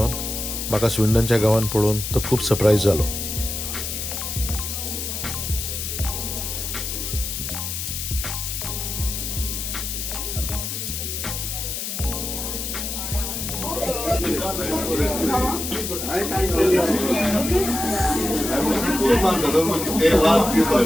म्हाका स्विंडनच्या गांवांत पळोवन तो खूब सरप्रायज जालो.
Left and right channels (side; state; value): left; noise; hiss, 4 dB below the sound